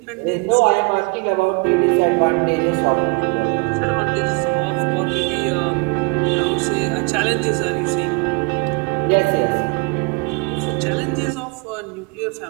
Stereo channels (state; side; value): quieter; left; 29.6 dB